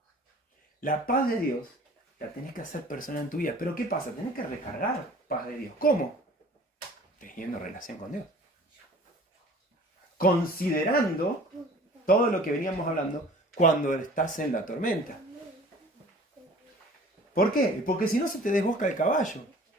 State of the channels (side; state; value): both; normal; correlation 0.47